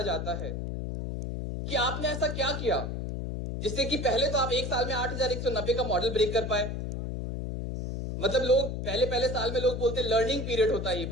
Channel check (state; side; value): noise; left; hum, 4 dB below the sound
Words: जाता है कि आपने ऐसा क्या किया जिससे कि पहले तो आप एक साल में 8190 का मॉडल ब्रेक कर पाए। मतलब लोग पहले साल में लोग बोलते हैं लर्निंग पीरियड होता है ये,